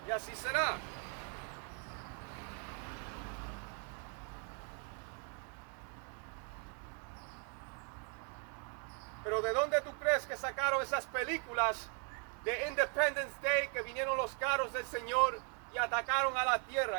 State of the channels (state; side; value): quieter; left; 38.4 dB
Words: Y así será. Pero ¿de dónde tú crees que sacaron esas películas de Independence Day, que vinieron los carros del Señor y atacaron a la